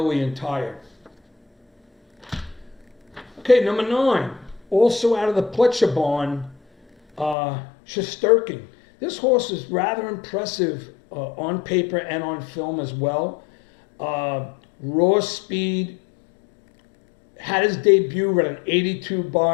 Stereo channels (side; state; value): right; drops out; at 7.4 s